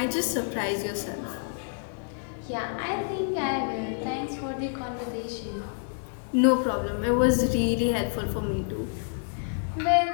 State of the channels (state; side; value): silent; right; digital silence